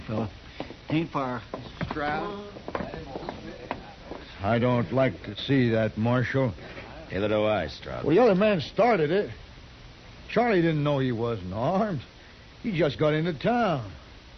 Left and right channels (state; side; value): identical; both; correlation 1.00